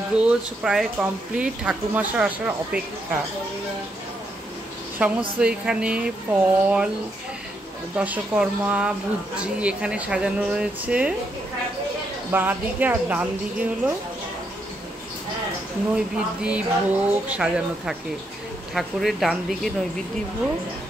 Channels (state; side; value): normal; both; correlation 0.78